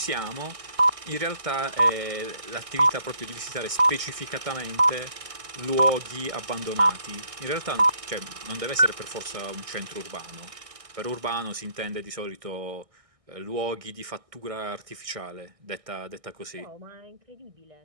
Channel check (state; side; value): late; left; 1.6 ms